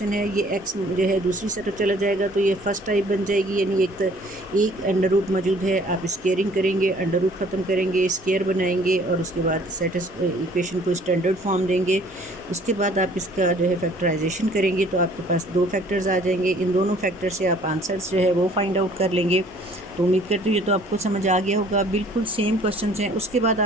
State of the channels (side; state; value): right; noise; hum, 26 dB below the sound